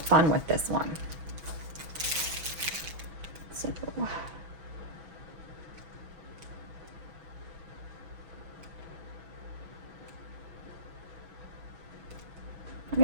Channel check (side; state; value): left; late; 6.1 ms